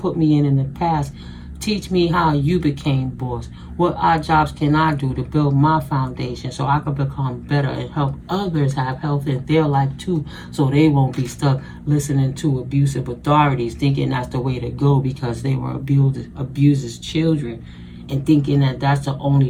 me in the past. Teach me how you became boss. What odd jobs can I do to build my foundation so I can become better and help others have health in their life too, so they won't be stuck listening to abusive authorities, thinking that's the way to go because they were abused as children, and thinking that that's the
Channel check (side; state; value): both; identical; correlation 1.00